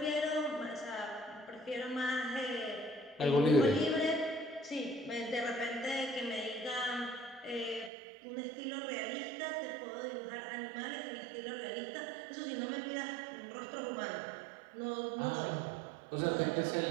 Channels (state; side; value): drops out; left; at 7.9 s